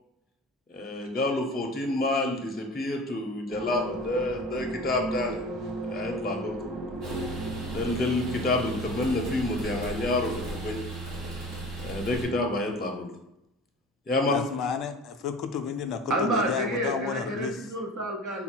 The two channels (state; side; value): normal; both; correlation 0.39